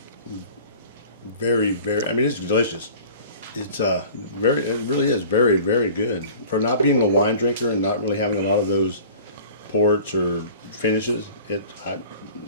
Very, very. I mean, it's delicious. It's it really is very, very good for not being a wine drinker and not really having a lot of those ports or finishes. It's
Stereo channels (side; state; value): both; inverted; correlation -0.44